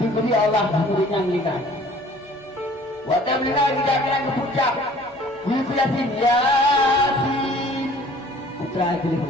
Allah muridnya mereka waktu mereka tidak kena kepucak ibu Yasin Yasin putra ibu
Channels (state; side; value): normal; both; correlation 0.52